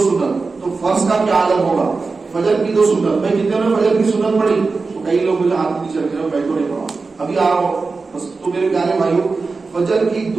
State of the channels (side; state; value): left; quieter; 4.2 dB